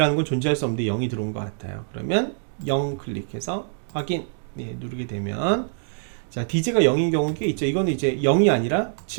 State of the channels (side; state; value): left; silent; digital silence